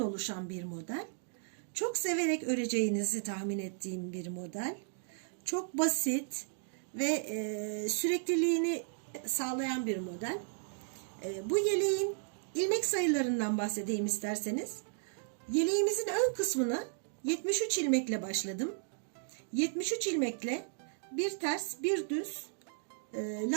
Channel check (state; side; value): silent; left; digital silence